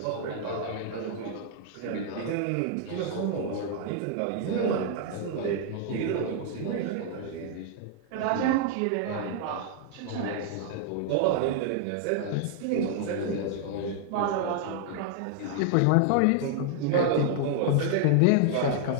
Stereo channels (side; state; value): both; different; correlation 0.00